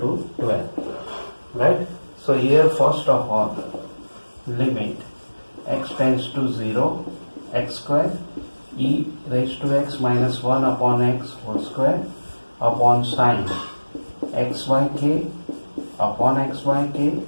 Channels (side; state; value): both; inverted; correlation -1.00